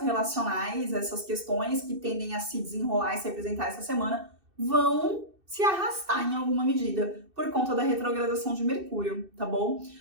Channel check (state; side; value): late; left; 2.6 ms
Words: relacionais, essas questões que tendem a se desenrolar e se apresentar essa semana, vão se arrastar em alguma medida por conta da retrogradação de Mercúrio, tá bom?